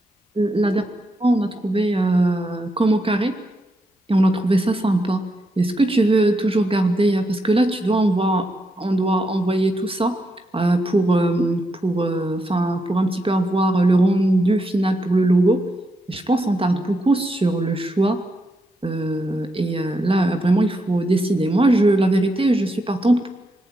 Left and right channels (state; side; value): normal; both; correlation 0.82